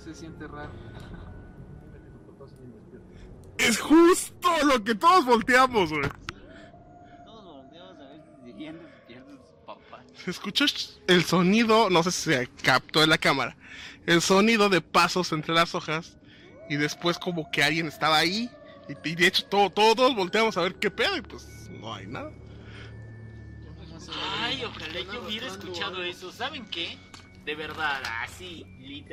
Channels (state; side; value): identical; both; correlation 1.00